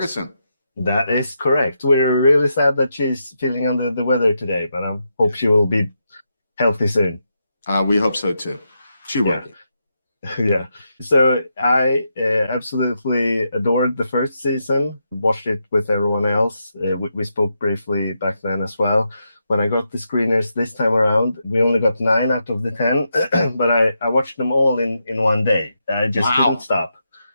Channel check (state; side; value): inverted; both; correlation -0.84